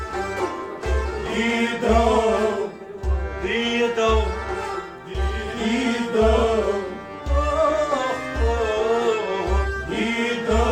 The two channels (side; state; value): both; identical; correlation 1.00